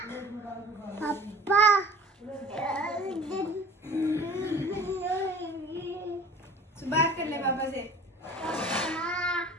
पापा बात कर ले पापा से।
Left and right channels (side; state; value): both; normal; correlation 0.44